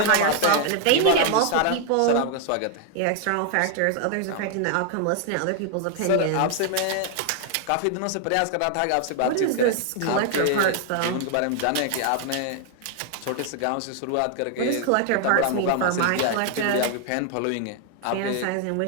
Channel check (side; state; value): both; different; correlation 0.00